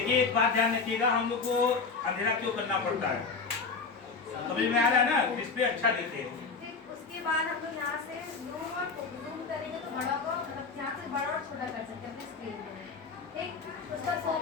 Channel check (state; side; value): quieter; right; 4.6 dB